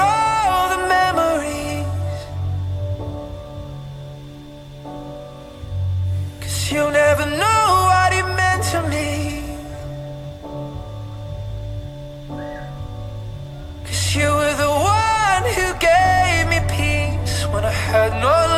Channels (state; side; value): identical; both; correlation 1.00